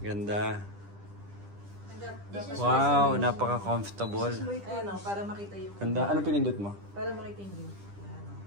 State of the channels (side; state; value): left; late; 10 ms